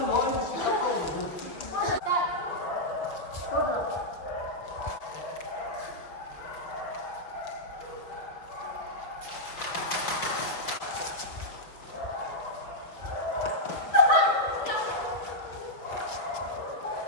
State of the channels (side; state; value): right; late; 5.7 ms